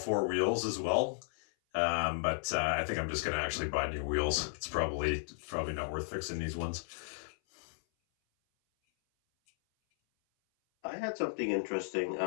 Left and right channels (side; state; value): right; silent; 55 dB below the other